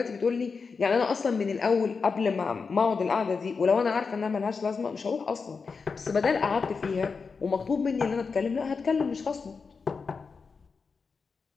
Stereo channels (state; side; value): quieter; right; 5.0 dB